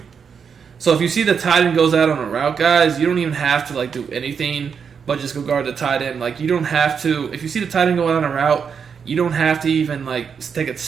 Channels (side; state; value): left; quieter; 6.6 dB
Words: So if you see the tight end goes out on a route, guys, you don't even have to, like, do anything but just go guard the tight end. Like, you don't have to, if you see the tight end go out on a route, you don't have to even, like, take a